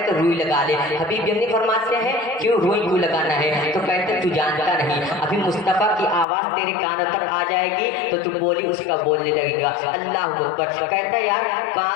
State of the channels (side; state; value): right; drops out; at 6.2 s